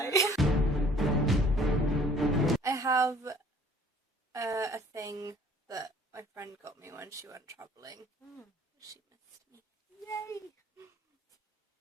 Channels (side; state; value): both; normal; correlation 0.55